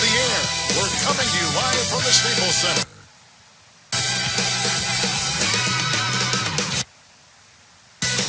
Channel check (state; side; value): identical; both; correlation 1.00